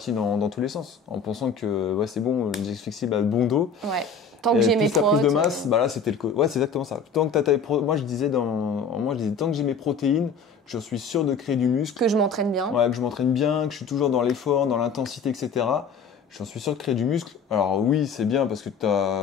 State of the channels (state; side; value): quieter; right; 5.1 dB